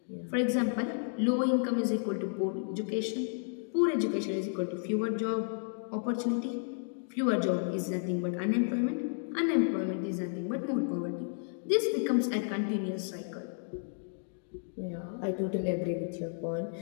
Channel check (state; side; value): silent; right; digital silence